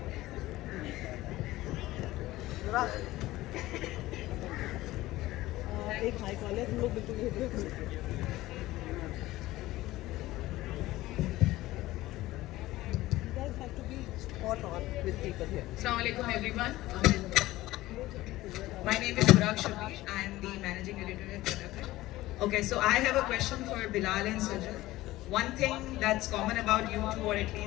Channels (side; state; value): right; quieter; 17.2 dB